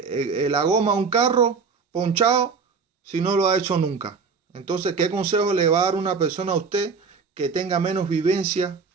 la goma a un carro ponchado si no lo ha hecho nunca. Entonces, ¿qué consejo le va a dar una persona a usted que tenga menos vivencia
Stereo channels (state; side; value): quieter; left; 5.2 dB